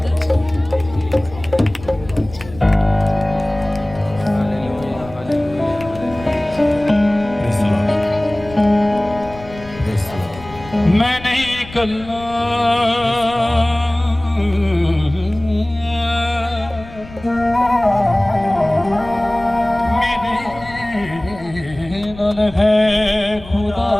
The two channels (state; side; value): noise; left; rumble, 17 dB below the sound